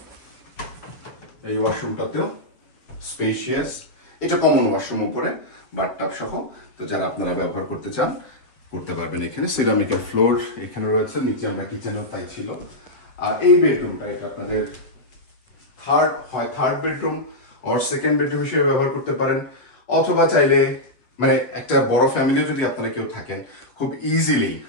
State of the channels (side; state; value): right; late; 7.4 ms